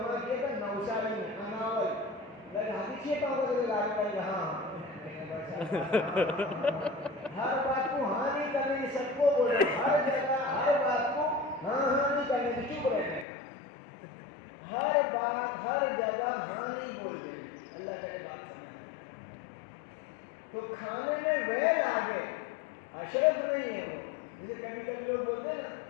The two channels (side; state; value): right; drops out; at 13.2 s